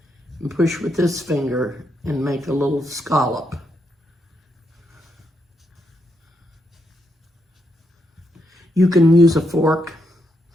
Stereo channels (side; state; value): both; normal; correlation 0.80